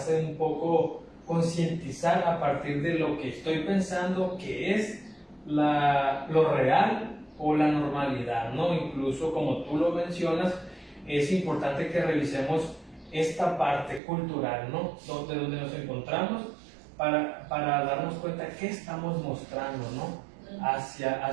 un poco concientizar a partir de lo que estoy pensando que es lo real o la normalidad, ¿no? Incluso, como tú lo mencionas, es importante que revisemos esta parte cultural, ¿no? Donde nos encontramos, para darnos cuenta qué estamos mostrando, ¿no?,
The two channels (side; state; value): left; drops out; at 14.0 s